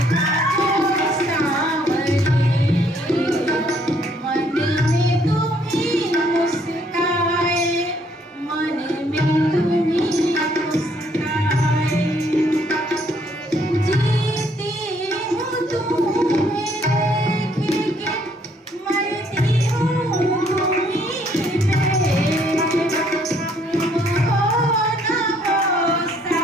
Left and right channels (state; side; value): normal; both; correlation 0.66